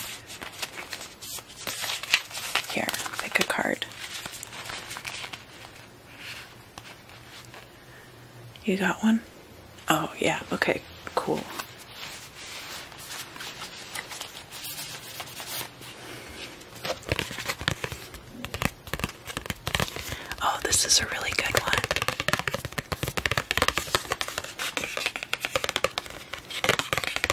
Here, pick a card. You got one? Oh, yeah, okay, cool. Oh, this is a really good one.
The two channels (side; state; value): both; identical; correlation 1.00